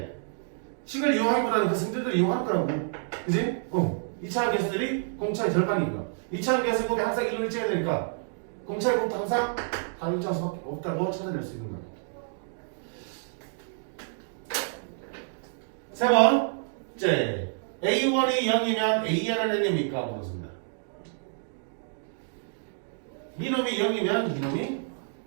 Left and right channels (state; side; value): silent; left; digital silence